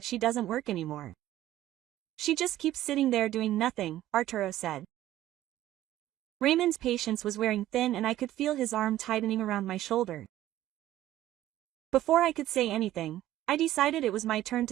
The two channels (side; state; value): left; quieter; 14.0 dB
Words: she doesn't work anymore. She just keeps sitting there doing nothing, Arturo said. Raymond's patience was wearing thin and I could feel his arm tightening around my shoulder. Before I could say anything, I decided it was my turn